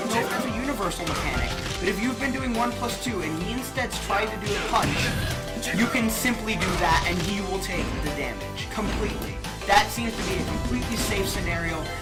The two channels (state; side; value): identical; both; correlation 1.00